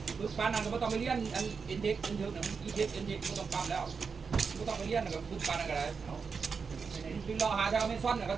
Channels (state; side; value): quieter; left; 5.4 dB